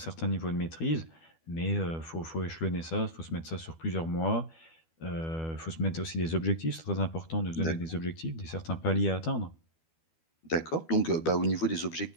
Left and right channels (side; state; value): right; late; 12 ms